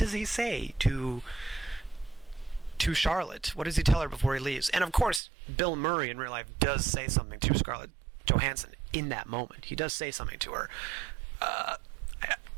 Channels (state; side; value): drops out; left; at 5.2 s